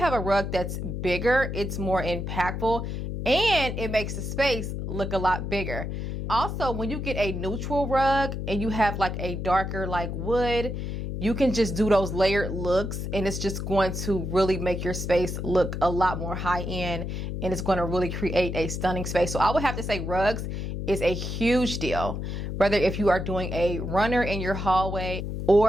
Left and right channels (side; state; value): left; noise; hum, 4 dB below the sound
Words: a rug that's bigger, it's more impactful and it makes the space look a lot bigger. Also, when you get a neutral rug and you have like a darker like wood, you can just do those layered looks and it's just going to really make your space look a lot more high end, and it's going to really create a stunning space. So I would have to say rugs is a huge deal, whether if you are doing a runner in your hallway